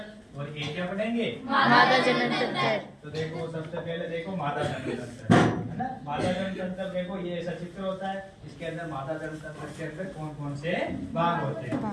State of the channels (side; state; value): both; identical; correlation 1.00